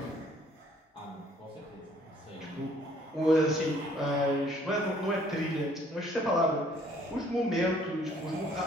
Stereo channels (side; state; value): both; normal; correlation 0.60